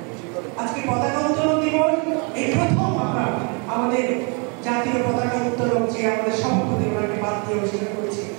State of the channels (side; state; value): left; quieter; 35.1 dB